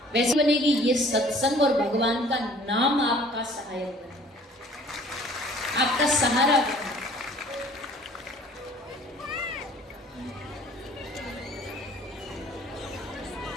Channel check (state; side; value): normal; both; correlation 0.53